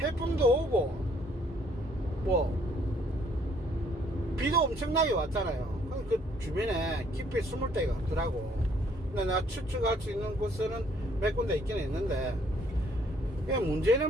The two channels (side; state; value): both; normal; correlation 0.64